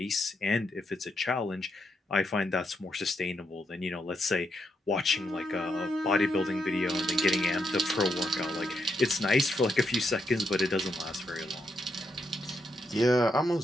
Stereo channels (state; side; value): normal; both; correlation 0.80